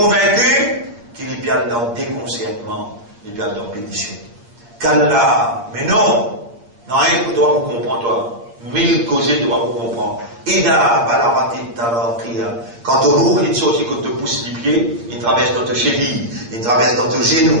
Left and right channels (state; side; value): late; left; 8.5 ms